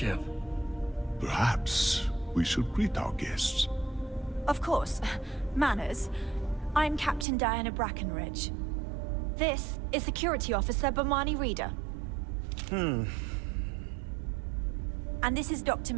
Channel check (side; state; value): left; drops out; at 7.2 s